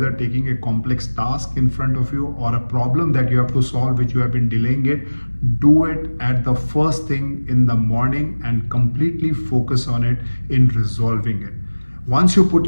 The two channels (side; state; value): both; inverted; correlation -1.00